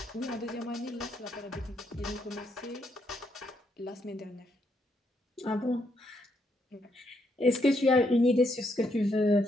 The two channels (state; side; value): normal; both; correlation 0.76